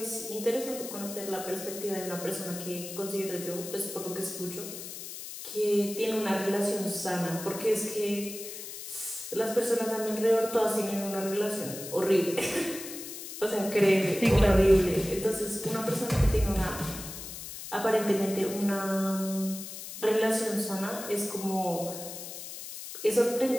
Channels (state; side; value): noise; left; hiss, 10 dB below the sound